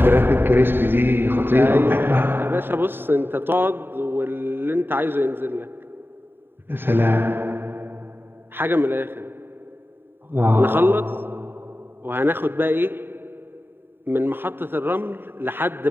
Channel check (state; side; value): late; left; 0.10 ms